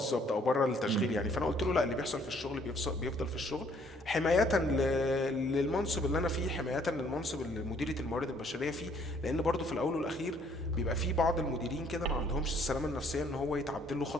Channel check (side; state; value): both; normal; correlation 0.63